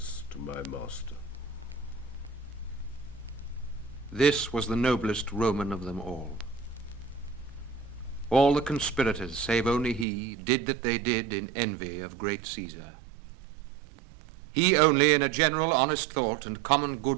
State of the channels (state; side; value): drops out; left; at 10.1 s